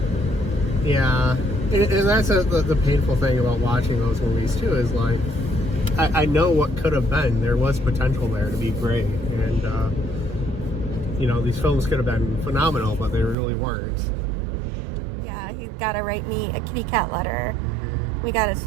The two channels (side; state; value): left; drops out; at 13.4 s